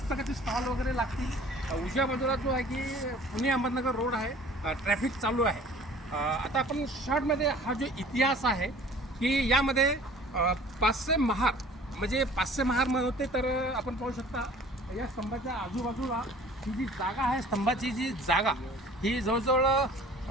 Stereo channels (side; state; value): both; normal; correlation 0.49